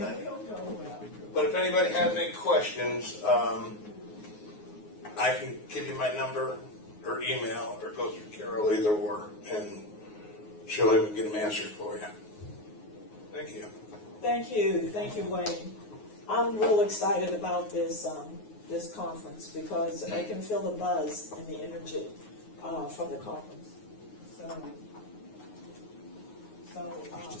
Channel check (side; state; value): right; late; 9.5 ms